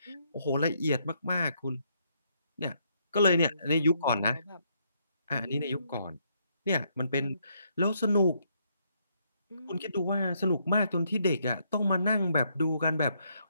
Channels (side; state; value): both; inverted; correlation -0.73